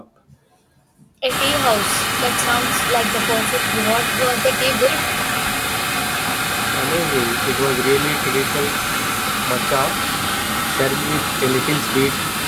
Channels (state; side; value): identical; both; correlation 1.00